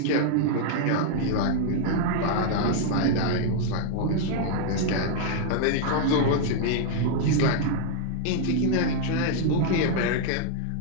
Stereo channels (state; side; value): different; both; correlation 0.00